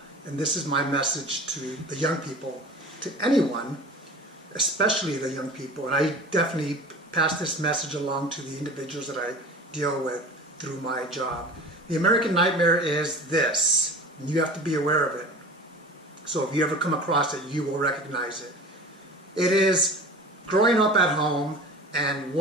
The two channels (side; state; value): both; normal; correlation 0.37